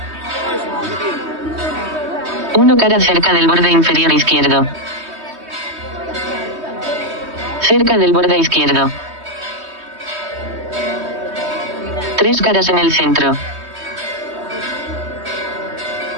Uno cara cerca del borde inferior izquierdo. Cerca del borde izquierdo. Tres caras en el centro.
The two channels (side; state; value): left; late; 3.2 ms